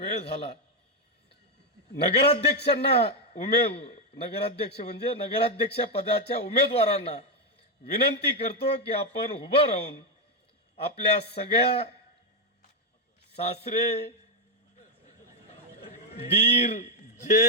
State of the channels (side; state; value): both; normal; correlation 0.05